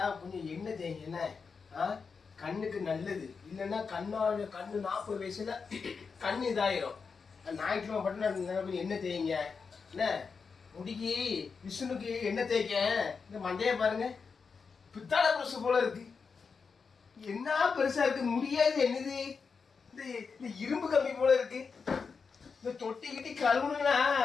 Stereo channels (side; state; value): right; quieter; 5.3 dB